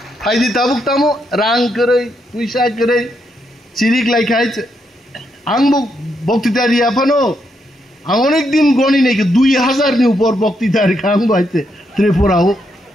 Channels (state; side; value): normal; both; correlation 0.79